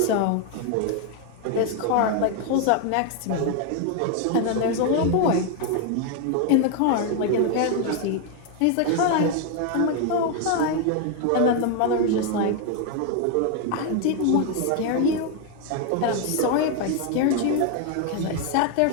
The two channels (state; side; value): different; both; correlation 0.01